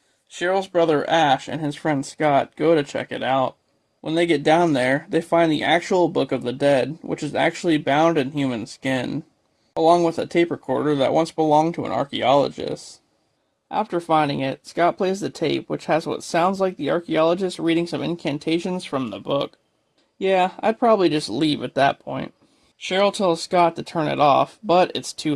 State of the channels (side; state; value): both; identical; correlation 1.00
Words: Cheryl's brother Ash and his friend Scott go to check it out. When they get down there, they find the actual Book of the Dead, which is actually bound in human skin, along with a tape recorder that once belonged to an archaeologist. After finding it, Scott plays the tape, which has what sounds like the archaeologist reading some incantations from the book. Yeah, I'd probably just leave at that point. Cheryl tells Scott to turn it off, but it's too